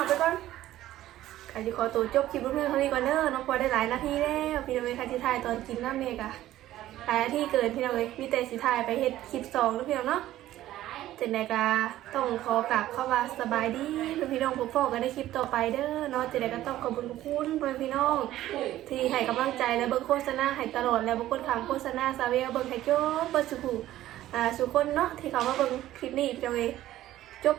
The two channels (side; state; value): left; quieter; 14.1 dB